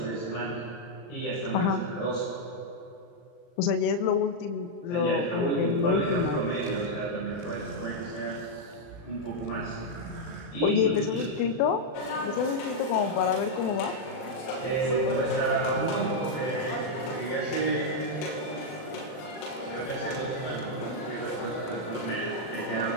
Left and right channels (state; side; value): late; right; 40 ms